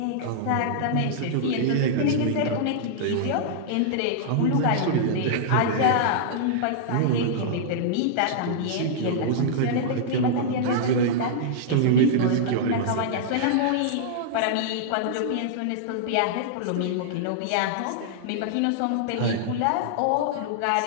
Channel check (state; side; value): different; both; correlation -0.02